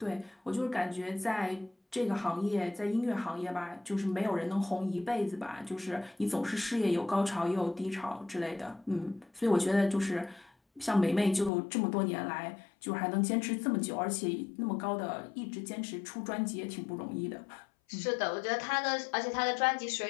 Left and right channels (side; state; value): right; drops out; at 11.5 s